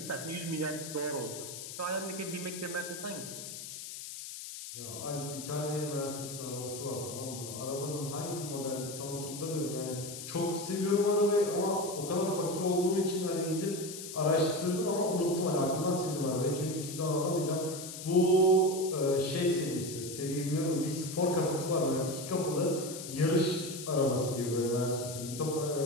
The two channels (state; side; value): noise; left; hiss, 10 dB below the sound